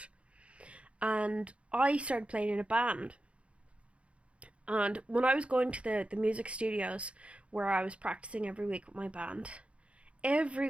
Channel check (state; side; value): late; left; 0.061 ms